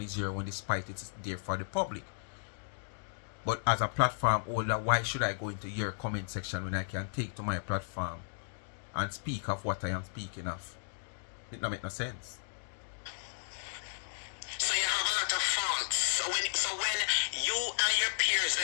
your one, despite it's there for the public. But as a platform holder, why should I go into your comment section when I can take to my platform and speak of what I am speaking of? It don't make no sense. So you have a lot of faults. So when you and your peers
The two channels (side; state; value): right; silent; digital silence